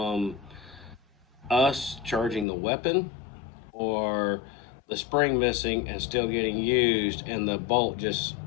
us charging the weapon or the spring missing and still getting used and the bolt just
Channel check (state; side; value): drops out; right; at 2.5 s